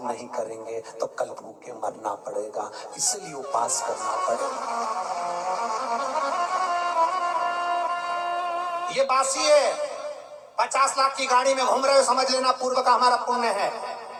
नहीं करेंगे तो कल भूखे मरना पड़ेगा, इसलिए उपवास करना पड़ेगा। ये बासी है, 50 लाख की गाड़ी में घूम रहे हो, समझ लेना पूर्व का हमारा पुण्य है।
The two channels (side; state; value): both; identical; correlation 1.00